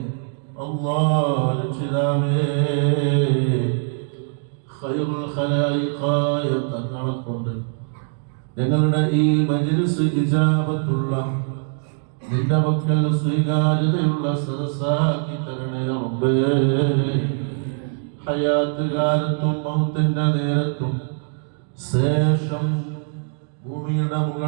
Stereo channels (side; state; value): left; silent; 57 dB below the other